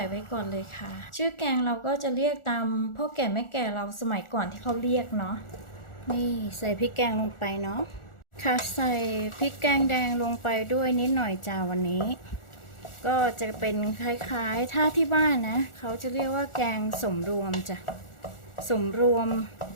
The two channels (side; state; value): right; late; 1.4 ms